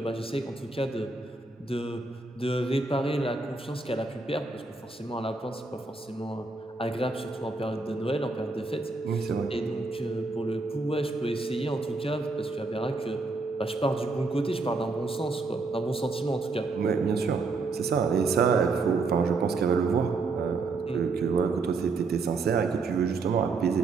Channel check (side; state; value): left; quieter; 3.8 dB